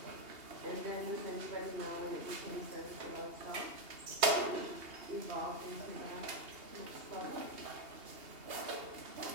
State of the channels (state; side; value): late; left; 2.8 ms